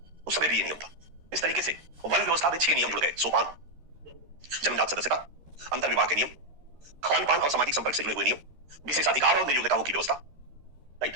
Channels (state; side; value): late; left; 13 ms